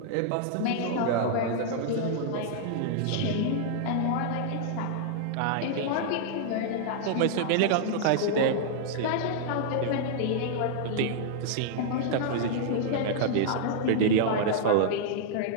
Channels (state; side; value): different; both; correlation -0.01